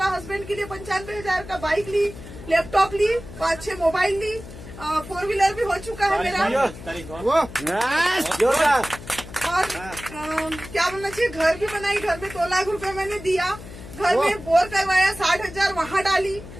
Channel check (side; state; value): left; noise; hum, 14 dB below the sound